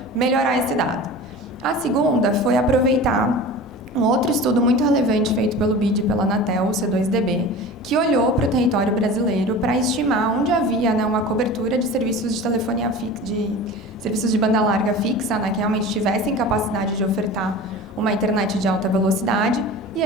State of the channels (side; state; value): both; normal; correlation 0.35